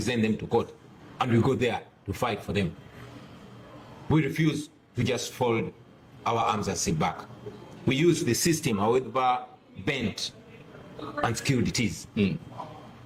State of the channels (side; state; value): both; identical; correlation 1.00